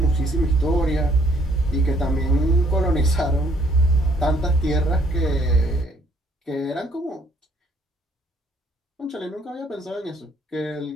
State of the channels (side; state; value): both; normal; correlation 0.64